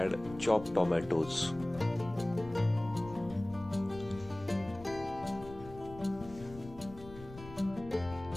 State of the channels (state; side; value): noise; left; rumble, 16 dB below the sound